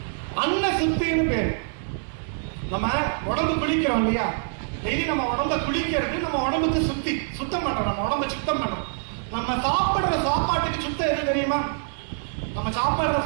அன்ன சுத்தின்னு பேரு. நம்ம உடம்பு குளிக்கிறோம் இல்லையா, டெய்லி நம்ம உடம்ப குளிக்கிறது நம்ம உடம்புக்கு சுத்தம் பண்றோம். நம்ம உடம்ப சுத்தம் பண்றோம். நம்ம சாப்பிடுற சாப்பாட்டுக்கு சுத்தம் எது தெரியுமா? நம்ம சாப்பிடுற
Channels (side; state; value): left; silent; digital silence